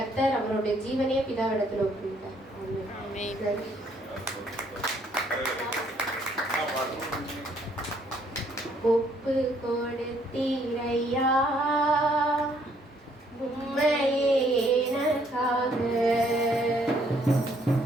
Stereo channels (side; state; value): both; normal; correlation 0.67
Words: அவருடைய ஜீவனையே பிதாவிடத்துல ஒப்புவித்தார். ஒப்பு கொடுத்தீரையா உம்மையே எனக்காக,